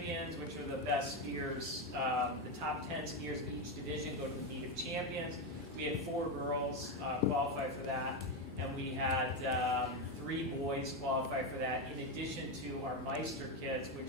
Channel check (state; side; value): normal; both; correlation 0.10